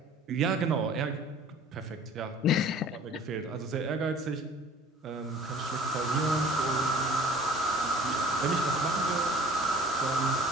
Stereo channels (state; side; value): normal; both; correlation 0.48